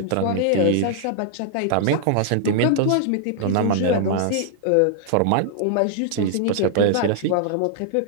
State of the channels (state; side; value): different; both; correlation -0.01